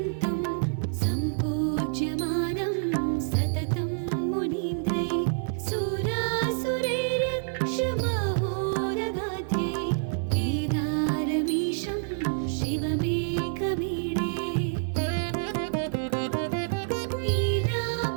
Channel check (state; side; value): silent; left; 60 dB below the other